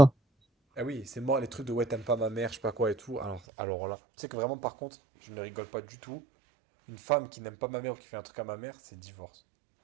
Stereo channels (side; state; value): left; drops out; at 3.4 s